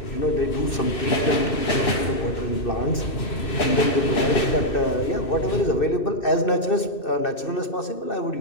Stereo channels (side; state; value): right; late; 2.6 ms